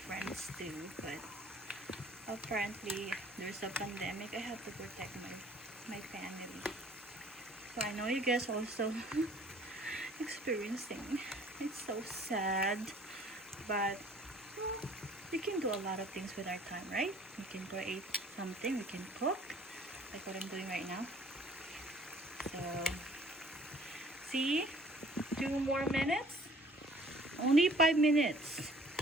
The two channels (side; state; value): both; normal; correlation 0.54